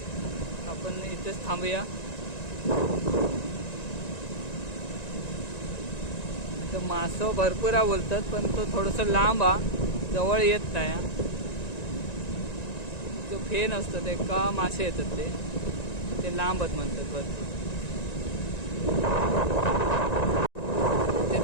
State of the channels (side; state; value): right; late; 1.9 ms